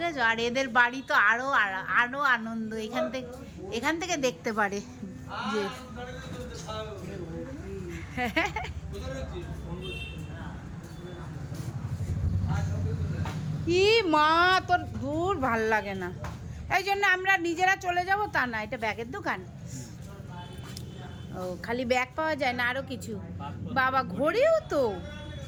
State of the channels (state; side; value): identical; both; correlation 1.00